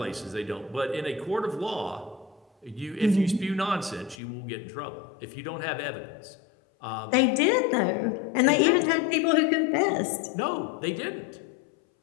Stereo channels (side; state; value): right; drops out; at 4.2 s